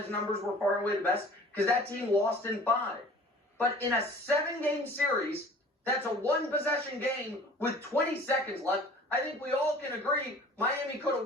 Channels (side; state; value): both; normal; correlation 0.47